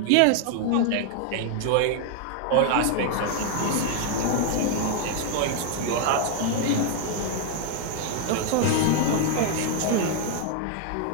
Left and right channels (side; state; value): both; different; correlation 0.00